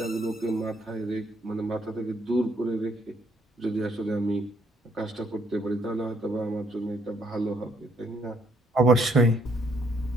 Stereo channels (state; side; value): normal; both; correlation 0.69